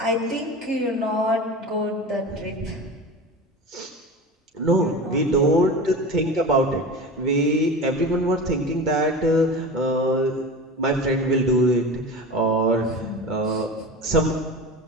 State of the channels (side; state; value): both; normal; correlation 0.30